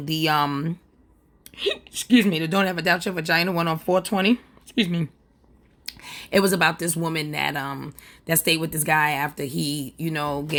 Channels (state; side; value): identical; both; correlation 1.00